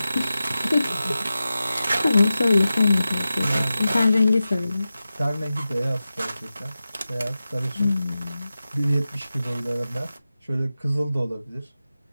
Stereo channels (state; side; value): inverted; both; correlation -0.94